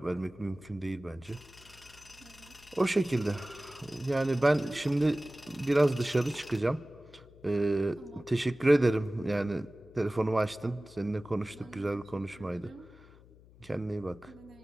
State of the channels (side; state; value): left; noise; hum, 24 dB below the sound